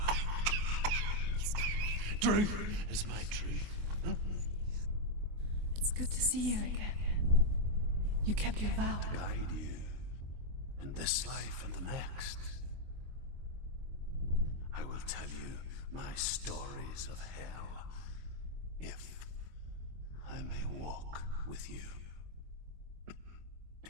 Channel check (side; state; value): left; late; 24 ms